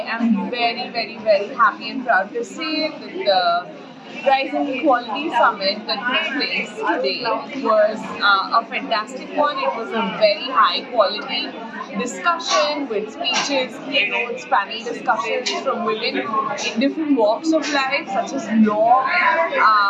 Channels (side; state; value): both; identical; correlation 1.00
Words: am very, very, very happy and proud to say that the Rising Equality Summit that took place today was a fantastic one. It was a very high quality discussion with speeches, keynotes, panel discussions from women in different walks of life, such as law,